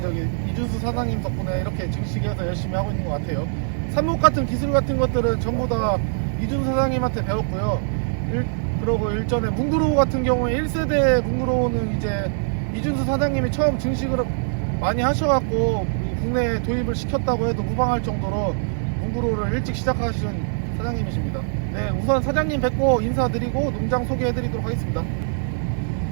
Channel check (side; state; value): left; silent; 59 dB below the other